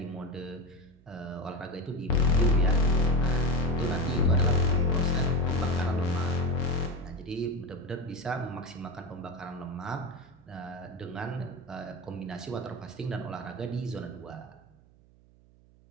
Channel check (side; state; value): right; noise; hum, 27 dB below the sound